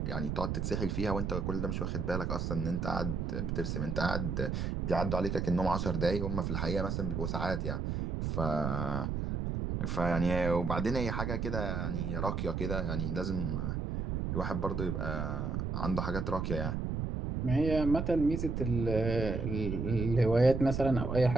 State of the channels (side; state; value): right; noise; rumble, 1 dB below the sound